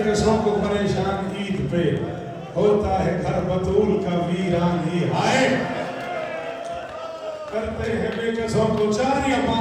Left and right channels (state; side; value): identical; both; correlation 1.00